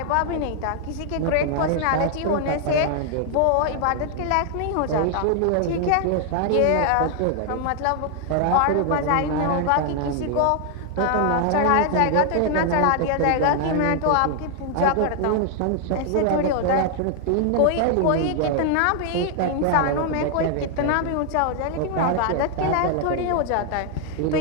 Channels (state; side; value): different; both; correlation 0.00